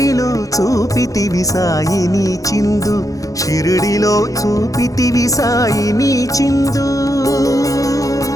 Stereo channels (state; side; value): late; right; 0.17 ms